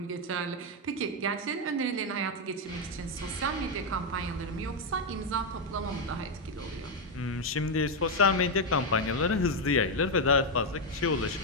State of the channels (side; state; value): both; normal; correlation 0.04